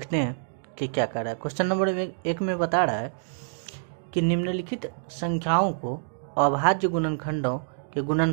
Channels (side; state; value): left; silent; digital silence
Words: हैं कि क्या कर रहा है। क्वेश्चन नंबर 1 में बता रहा है कि निम्नलिखित संख्याओं को अभाज्य गुणनखंडों के